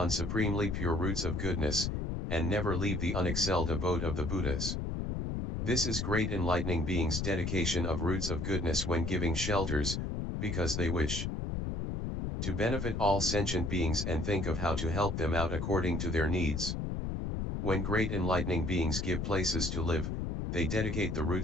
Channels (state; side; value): noise; left; rumble, 2 dB below the sound